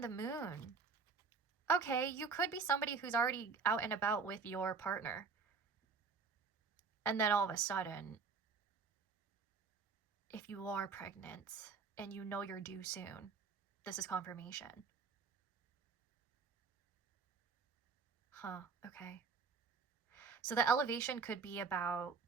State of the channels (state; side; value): quieter; left; 5.1 dB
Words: the moon. Okay, you could be somebody who's already out and about with your partner. And then all of a sudden, if you are pregnant and you know you're due soon, this is confirmation. Huh, okay. So the elevation could be about